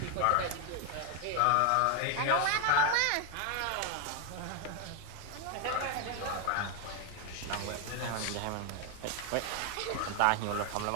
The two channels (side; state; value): both; different; correlation 0.01